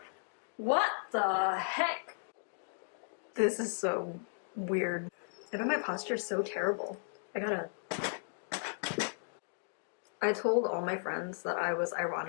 What the heck? This is so weird. I bet my posture is so terrible. I told all my friends that I was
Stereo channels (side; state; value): right; silent; digital silence